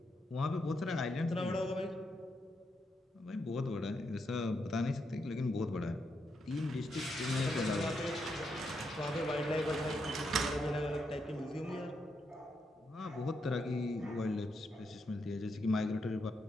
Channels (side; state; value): both; normal; correlation 0.81